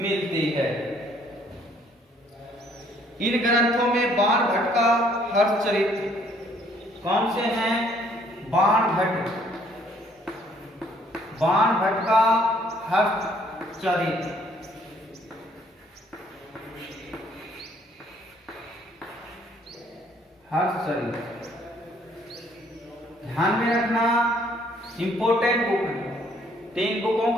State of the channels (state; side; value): normal; both; correlation 0.63